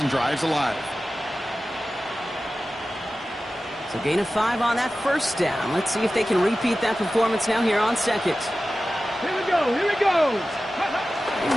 drives alive. So gain of 5 on that first down. Let's see if they can repeat that performance now here on second. Here we go. They make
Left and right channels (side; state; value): both; normal; correlation 0.95